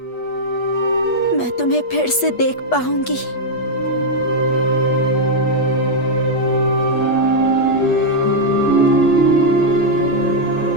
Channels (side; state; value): right; late; 8.2 ms